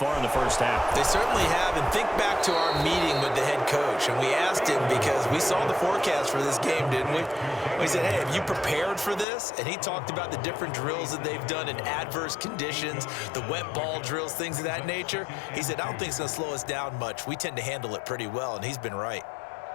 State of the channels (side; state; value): right; drops out; at 9.2 s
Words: in the first half. They certainly have, and think back to our meeting with the head coach, and we asked him because we saw the forecast for this game, didn't we? We said, hey, have you prepared for this? And he talked about the different drills that they've done in adverse conditions, the wet ball drills, things of that nature. He said, I don't think it's going to slow us down much. We tend to handle it pretty well, and he's been right.